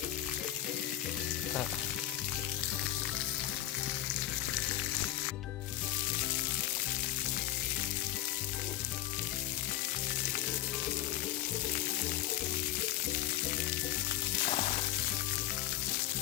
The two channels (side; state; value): right; quieter; 13.1 dB